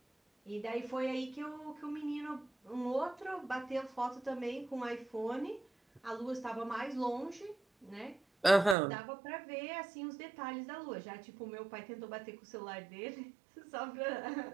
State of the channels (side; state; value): left; drops out; at 8.8 s